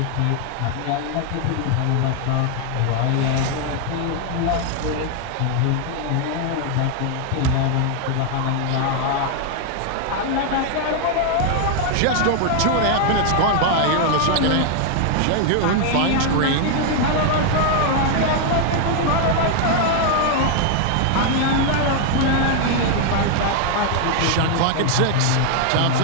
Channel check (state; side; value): different; both; correlation 0.00